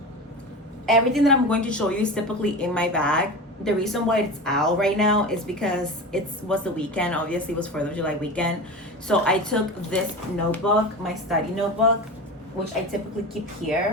Everything that I'm going to show you is typically in my bag. The reason why it's out right now is because it was the weekend. Obviously, it was 4th of July weekend. So I took this notebook, my study notebook, which I typically keep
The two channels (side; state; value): both; normal; correlation 0.28